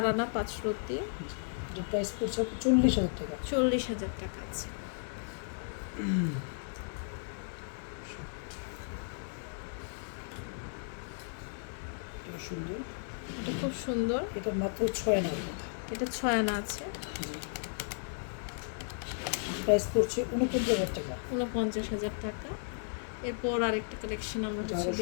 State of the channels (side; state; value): right; silent; digital silence